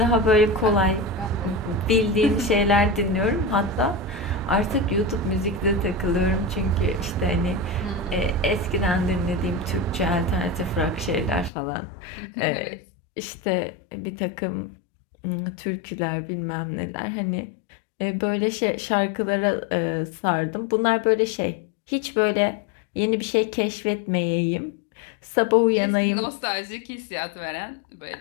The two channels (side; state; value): right; drops out; at 11.5 s